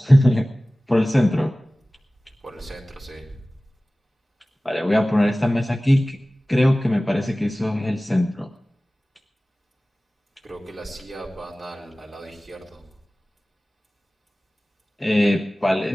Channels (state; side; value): normal; both; correlation 0.97